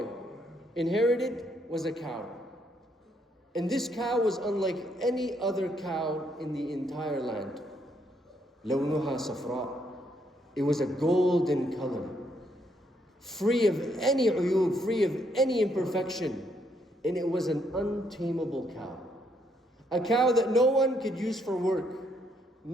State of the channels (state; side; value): normal; both; correlation 0.73